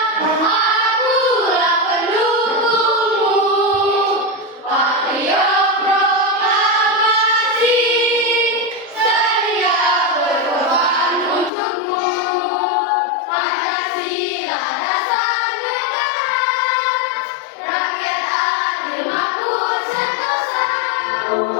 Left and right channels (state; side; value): drops out; right; at 11.5 s